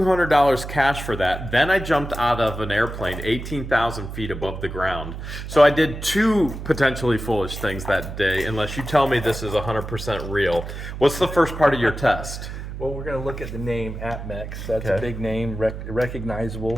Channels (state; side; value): noise; right; hum, 8 dB below the sound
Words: cash for that. Then I jumped out of an airplane 18,000 feet above the ground. So I did 2 potentially foolish things that day, unless you tell me this is 100% real. What's the first part of your test? Well, we're going to look at the name APMEX. That's a Okay. big name,